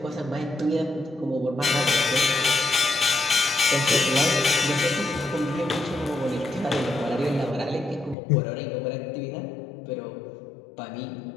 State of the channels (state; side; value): drops out; right; at 8.2 s